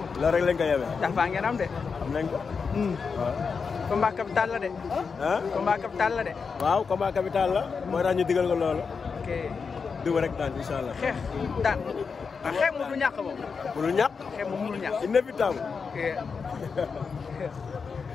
loolu rek lañ ko yebe Talfa ngeen am de am nañ ko waaw combat capital la de combat capital la de waaw combat capital la moo tax ñu digal ko loolu ok duma rek daan incha allah xeex daan xeex moom du ñàkk moom mënul ñàkk xeex moom mënul ñàkk inévitable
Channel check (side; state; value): right; quieter; 5.4 dB